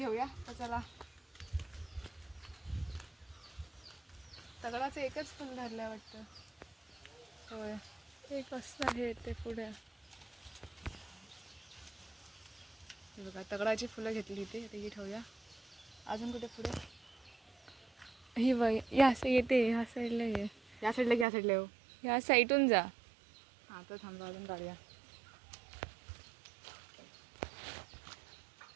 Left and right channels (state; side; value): drops out; left; at 21.2 s